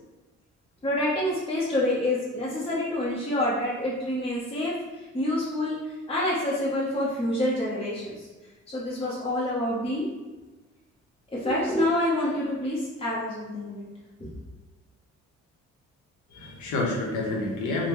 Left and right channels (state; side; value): normal; both; correlation 0.38